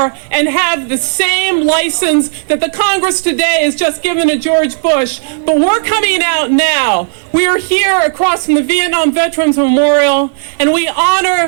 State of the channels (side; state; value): left; silent; digital silence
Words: and have the same license that the Congress today has just given to George Bush. But we're coming out now. We are here across from the Vietnam Veterans Memorial, and we